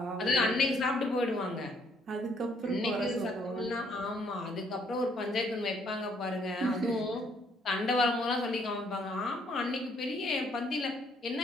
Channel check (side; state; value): both; normal; correlation 0.67